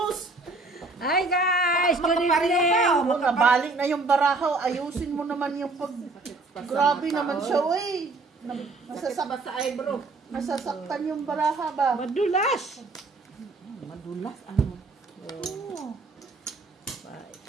Hi guys, good Makabalik evening. Makabalik na yung barahaw. Ayusin mo naman yung pag... Grabe naman siya, uy. Masasaktan sa eyebrow. Masasaktan yung baraha ba? Madulas. Madulas, ano? Oo. Bye.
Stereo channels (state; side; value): quieter; left; 3.5 dB